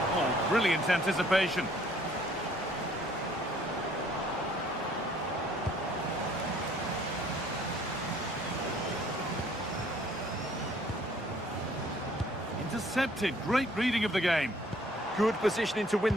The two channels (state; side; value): normal; both; correlation 0.59